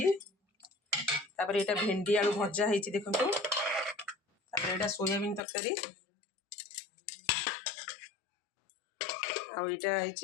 तापर एटा भेंडी आलू भजा होईची देखंतु तापर एटा सोयाबीन तरकारी आ एटा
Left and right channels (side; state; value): right; drops out; at 5.4 s